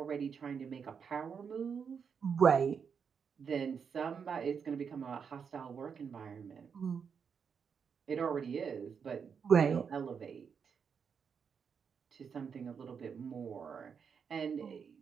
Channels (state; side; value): quieter; left; 6.5 dB